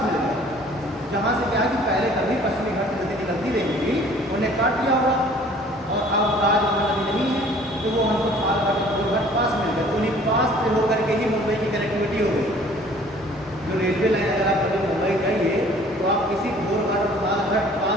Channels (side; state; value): both; normal; correlation 0.53